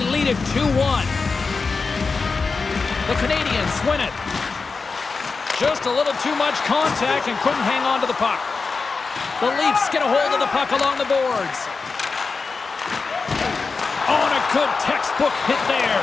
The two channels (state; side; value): quieter; right; 4.5 dB